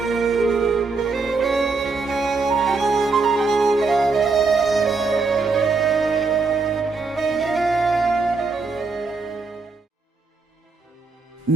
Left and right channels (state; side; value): quieter; left; 4.2 dB